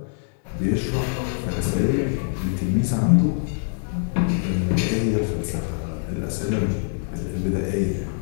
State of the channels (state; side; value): silent; right; 63 dB below the other